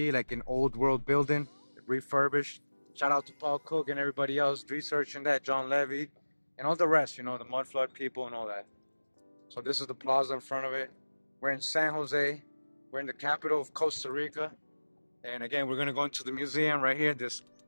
like an old world building, refurbished. Shout out to Paul Cook and everybody else researching that, John Levy, and all the rest, the mud flood people and all that. So this is the plaza in front of it. We're in San Jose. We're in the capital of Costa Rica. And again, we're gonna go into the museum right here. This,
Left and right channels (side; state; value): both; inverted; correlation -1.00